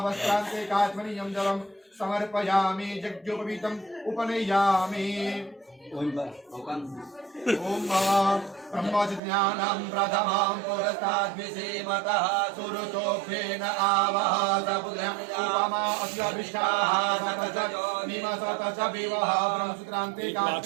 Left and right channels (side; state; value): left; drops out; at 9.2 s